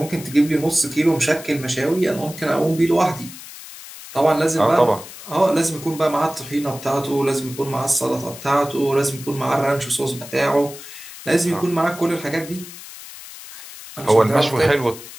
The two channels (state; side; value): noise; left; hiss, 15 dB below the sound